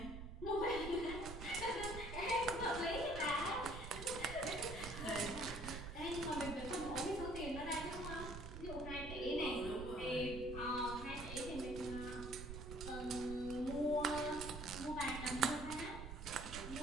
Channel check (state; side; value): noise; right; rumble, 8 dB below the sound